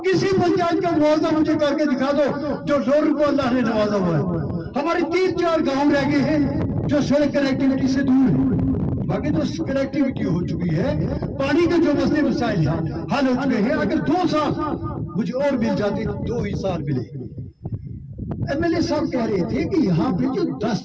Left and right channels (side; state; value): both; identical; correlation 1.00